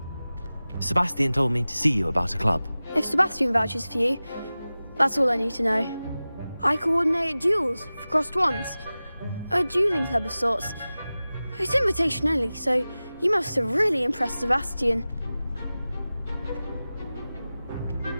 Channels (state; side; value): inverted; both; correlation -0.97